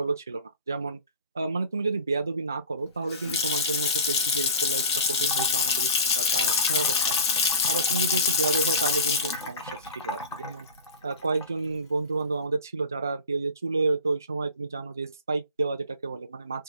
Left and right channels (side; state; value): both; inverted; correlation -0.34